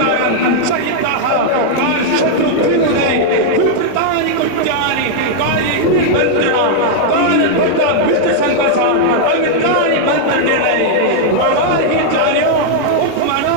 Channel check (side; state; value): both; different; correlation -0.01